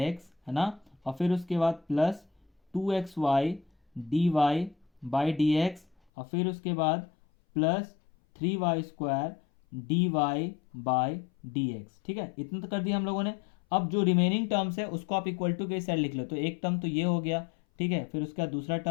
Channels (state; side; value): drops out; right; at 6.0 s